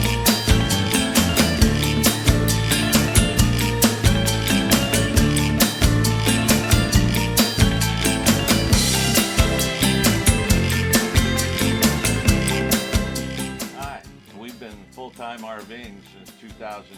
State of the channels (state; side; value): identical; both; correlation 1.00